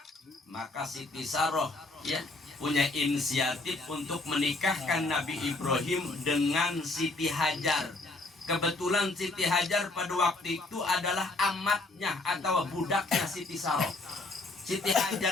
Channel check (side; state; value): right; quieter; 3.0 dB